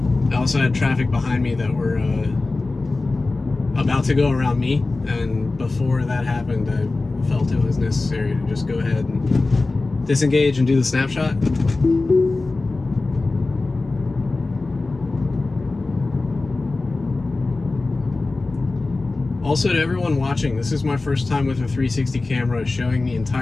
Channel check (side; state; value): right; quieter; 3.4 dB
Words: I also had traffic behind me that were about to go around me, and before that happened, I felt it was necessary to just go ahead and disengage and do the snapshot. Also, to everyone watching, this is my first time with a 360 camera showing the